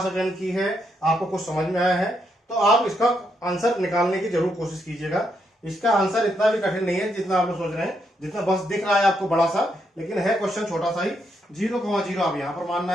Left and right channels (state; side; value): normal; both; correlation 0.78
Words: अटेंड की है, आपको कुछ समझ में आया है, तो आप इसका आंसर निकालने की जरूर कोशिश कीजिएगा। इसका आंसर इतना भी कठिन नहीं है जितना आप लोग सोच रहे हैं, जितना बस दिख रहा है आपको बड़ा सा, लेकिन है क्वेश्चन छोटा सा ही। 0,0 आप यहां पर मानना